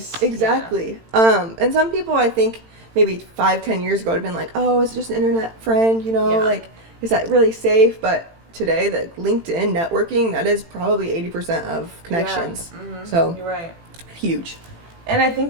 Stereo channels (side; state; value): left; late; 18 ms